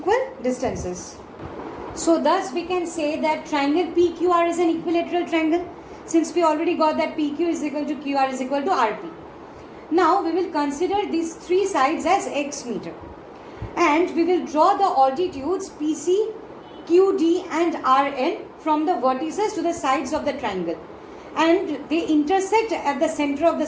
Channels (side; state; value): both; identical; correlation 1.00